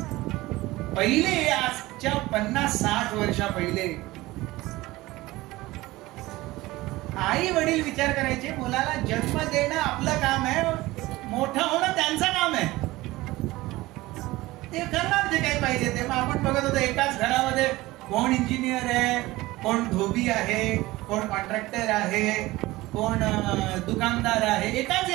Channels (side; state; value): left; quieter; 19.1 dB